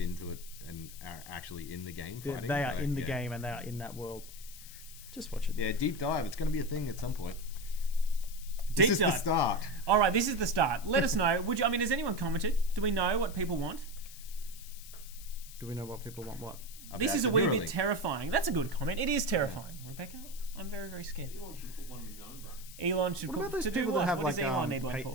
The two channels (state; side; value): noise; left; hiss, 16 dB below the sound